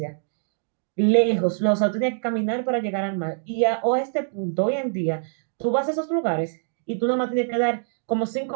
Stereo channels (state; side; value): silent; left; digital silence